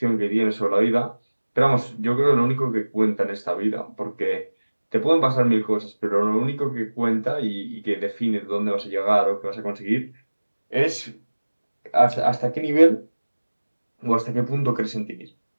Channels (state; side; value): inverted; both; correlation -1.00